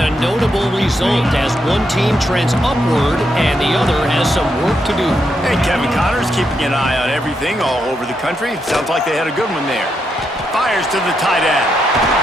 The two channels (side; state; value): both; normal; correlation 0.81